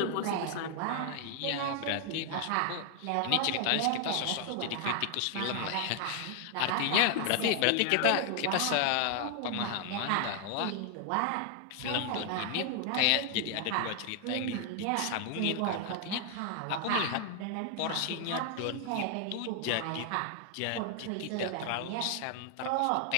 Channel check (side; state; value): both; different; correlation 0.00